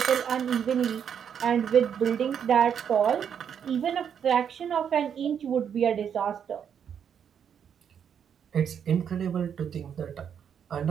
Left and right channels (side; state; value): left; quieter; 8.0 dB